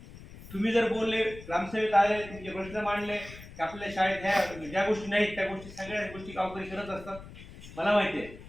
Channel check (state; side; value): noise; left; rumble, 16 dB below the sound